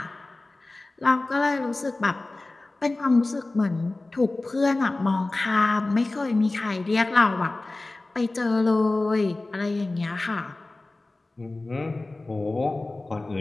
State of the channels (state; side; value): quieter; right; 3.0 dB